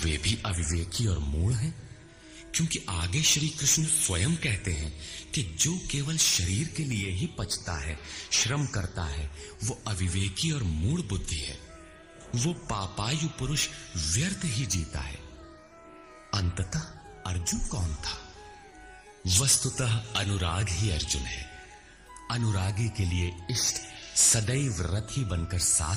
भी अविवेकी और मूढ़ हैं, क्योंकि आगे श्री कृष्ण स्वयं कहते हैं कि जो केवल शरीर के लिए ही पचता है, श्रम करता है, वो अविवेकी और मूढ़ बुद्धि है। वो पापायु पुरुष व्यर्थ ही जीता है। अंततः अर्जुन कौन था? वस्तुतः अनुराग ही अर्जुन है। अनुरागी के लिए इष्ट सदैव रथी बनकर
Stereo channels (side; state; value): both; identical; correlation 1.00